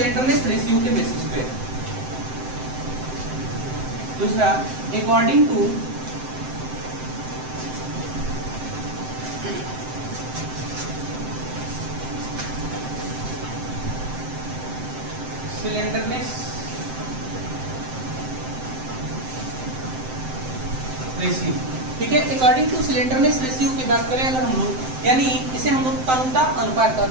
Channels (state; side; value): late; left; 7.7 ms